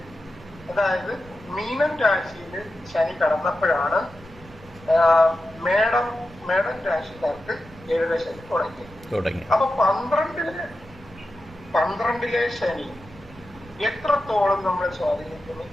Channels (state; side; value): noise; right; rumble, 21 dB below the sound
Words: അതായത് മീനം രാശിയില് ശനി കടന്നപ്പോഴാണ് മേടം രാശിക്കാർക്ക് ഏഴരശനി തുടങ്ങി. അപ്പൊ 12ലെ ശനി എത്രത്തോളം നമ്മളെ സ്വാധീനിക്കുന്നു,